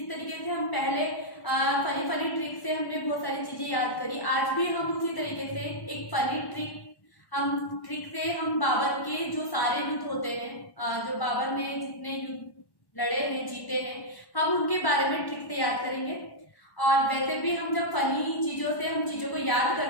तरीके से हम पहले फनी फनी ट्रिक से हमने बहुत सारी चीजें याद करी, आज भी हम उसी तरीके से एक फनी ट्रिक से हम बाबर के जो सारे युद्ध होते हैं, जो बाबर ने जितने युद्ध लड़े हैं, जीते हैं, हम उनके बारे में ट्रिक से याद करेंगे। और वैसे भी हम जब फनी चीजों से हम चीजों को याद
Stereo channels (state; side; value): late; right; 1.1 ms